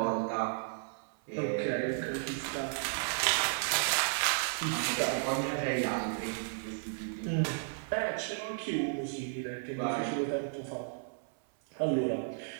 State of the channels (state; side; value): silent; left; 55 dB below the other